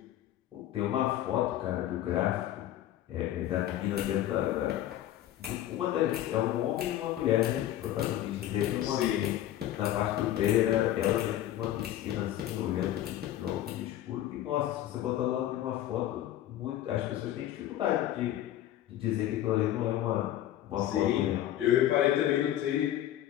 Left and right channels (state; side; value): quieter; right; 12.7 dB